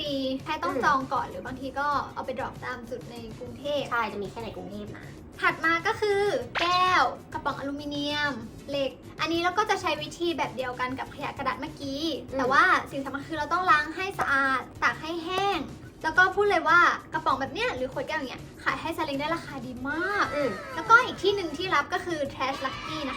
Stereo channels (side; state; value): both; identical; correlation 1.00